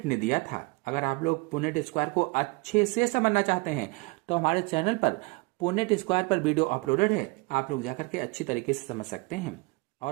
ने दिया था। अगर आप लोग पुनेट स्क्वायर को अच्छे से समझना चाहते हैं तो हमारे चैनल पर पुनेट स्क्वायर पर वीडियो अपलोडेड है, आप लोग जाकर के अच्छी तरीके से समझ सकते हैं।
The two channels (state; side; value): quieter; left; 27.1 dB